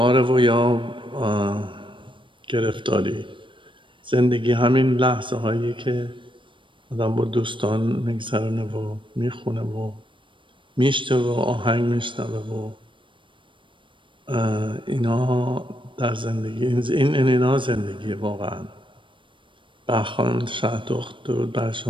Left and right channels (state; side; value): late; left; 0.24 ms